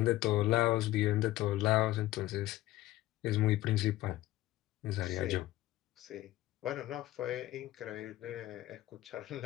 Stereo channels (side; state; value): right; quieter; 16.0 dB